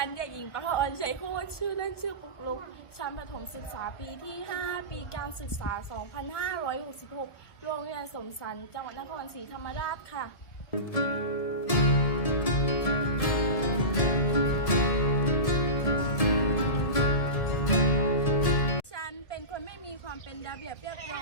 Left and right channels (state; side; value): late; right; 1.3 ms